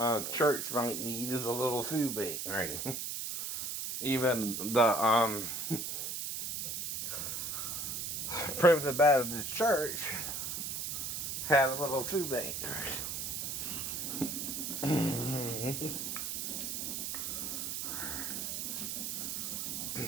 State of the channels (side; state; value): right; noise; hiss, 3 dB below the sound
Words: church might need is a little food bank, right? Even the Primitive Baptist Church had a little food bank.